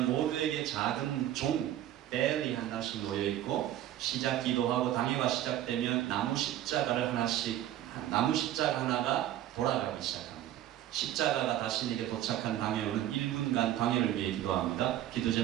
모두에게 작은 종, 벨이 하나씩 놓여있고 시작 기도하고 당회가 시작되면 나무 십자가 하나가 돌아가기 시작합니다. 십자가가 자신에게 도착한 당회원은 1분간 당회를 위해 기도합니다. 기도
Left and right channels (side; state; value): left; quieter; 12.6 dB